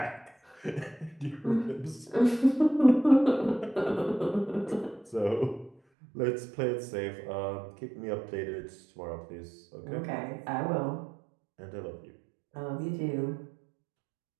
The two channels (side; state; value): left; drops out; at 5.8 s